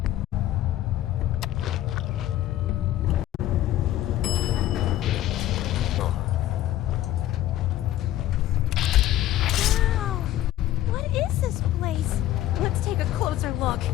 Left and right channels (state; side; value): quieter; right; 13.6 dB